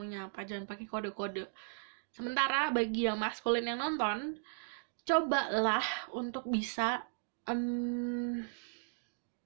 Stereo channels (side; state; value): left; silent; digital silence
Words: apa, jangan pakai kode-kode. Sementara bagi yang maskulin yang nonton, cobalah untuk bisa